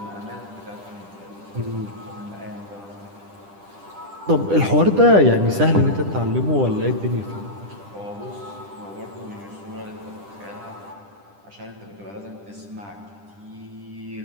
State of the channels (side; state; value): left; late; 10 ms